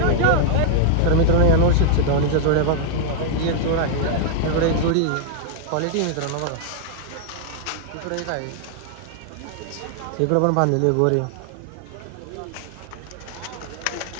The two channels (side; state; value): both; different; correlation -0.01